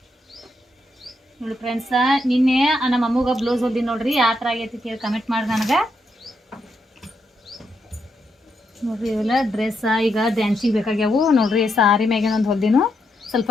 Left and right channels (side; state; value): both; normal; correlation 0.80